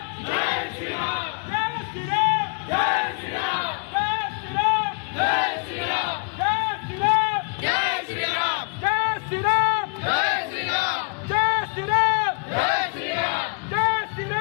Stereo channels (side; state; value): right; quieter; 37.4 dB